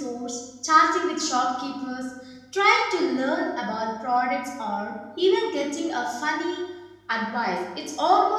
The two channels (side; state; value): both; identical; correlation 1.00